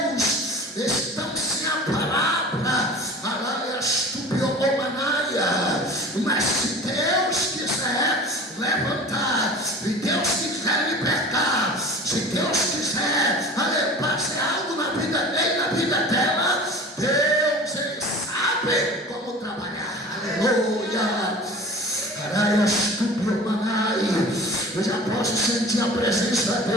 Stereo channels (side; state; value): both; normal; correlation 0.39